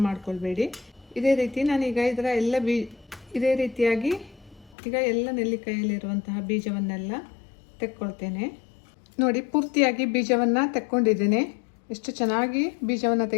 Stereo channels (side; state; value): right; drops out; at 4.8 s